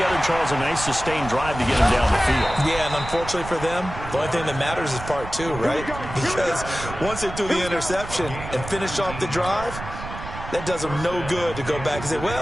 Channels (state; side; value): noise; right; rumble, 10 dB below the sound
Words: Charles, a nice sustained drive to get them down the field. Yeah, and unfortunately for them, the only thing that matters is part 2, right? Because once they threw the interception and finished off the drive, that does them no good to go back and say,